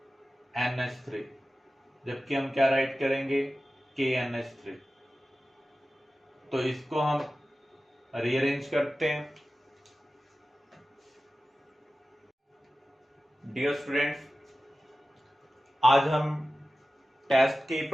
जबकि हम क्या राइट करेंगे, KNH3। तो इसको हम रीअरेंज करते हैं। डियर स्टूडेंट्स, आज हम टेस्ट की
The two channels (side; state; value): both; normal; correlation 0.95